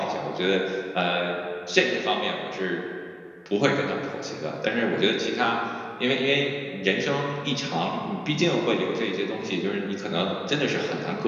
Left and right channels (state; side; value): identical; both; correlation 1.00